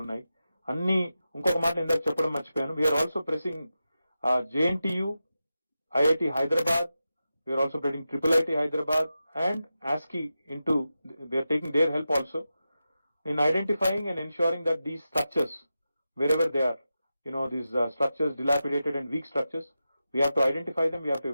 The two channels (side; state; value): both; inverted; correlation -0.91